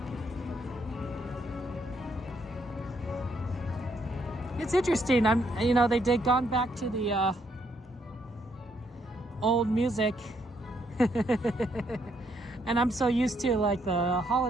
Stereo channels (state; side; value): normal; both; correlation 0.73